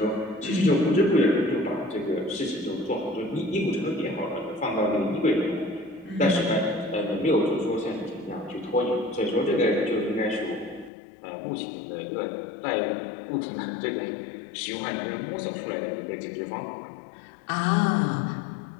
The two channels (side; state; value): right; drops out; at 10.9 s